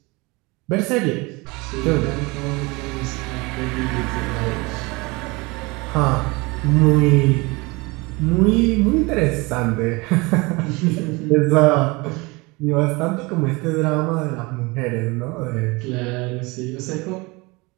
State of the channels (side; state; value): left; quieter; 24.9 dB